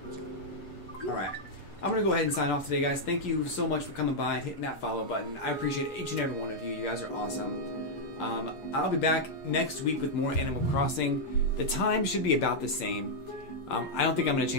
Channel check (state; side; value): late; right; 6.7 ms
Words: Alright. I'm going to go ahead and sign off today, guys. Thank you so much for coming by and hitting that follow button. I appreciate each and every one of you. You guys are awesome. I'll be back next week with more Animal Crossing. The time should be about the same. I don't think I'm going to